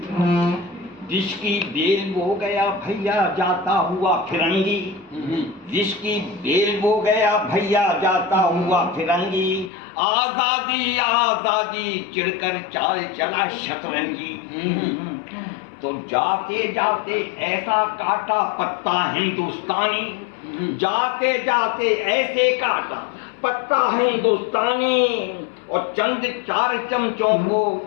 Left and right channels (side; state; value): right; drops out; at 9.7 s